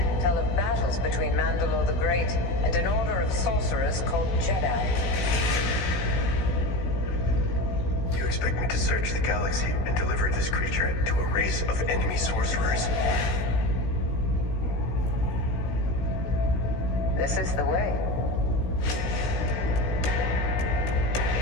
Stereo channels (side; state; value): right; late; 16 ms